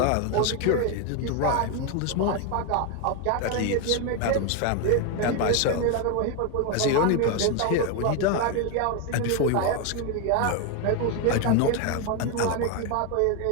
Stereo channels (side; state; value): both; different; correlation 0.01